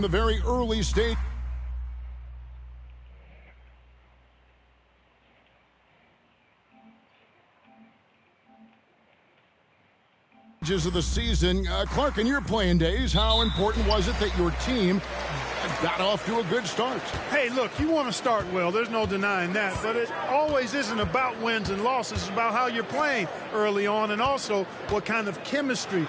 the very early stages of the season. Clark, in your playing days, how important was it that your team got off to a good start? Hey, look, you want to start well. There's no denying that. But it always isn't about wins and losses. It's about how you're playing early on, and also what kind of chemistry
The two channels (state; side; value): identical; both; correlation 1.00